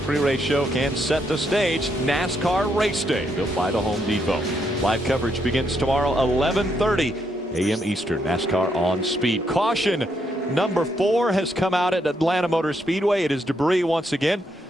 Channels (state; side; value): normal; both; correlation 0.77